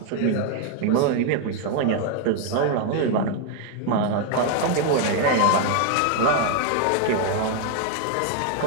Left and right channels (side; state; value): both; different; correlation 0.00